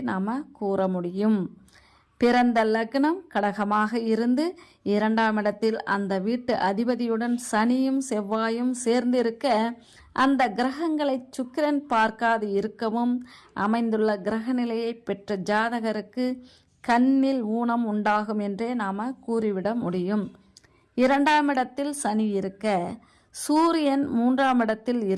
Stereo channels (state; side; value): identical; both; correlation 1.00